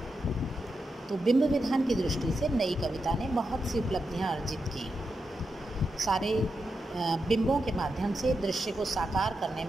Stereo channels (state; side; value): normal; both; correlation 0.87